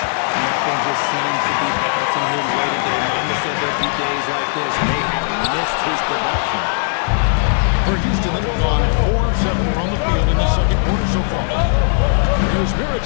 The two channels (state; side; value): silent; right; digital silence